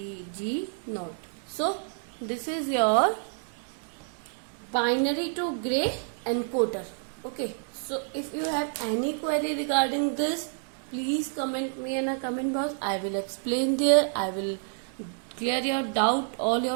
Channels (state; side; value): silent; left; 59 dB below the other